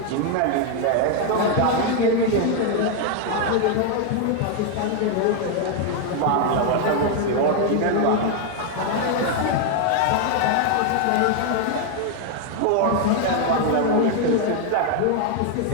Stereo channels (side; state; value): both; different; correlation 0.00